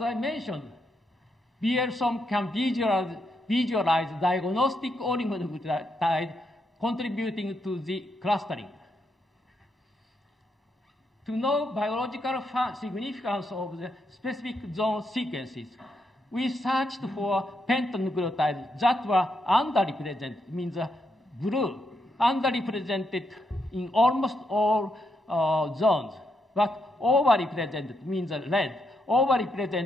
I mentioned, BL-SOM can visualize diagnostic oligonucleotide contributing to the clustering. To know biological significance of the specific zone sequences, we searched for pentanucleotides that were underrepresented, means blue, underrepresented in almost all zones, but overrepresented means red,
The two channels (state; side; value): normal; both; correlation 0.80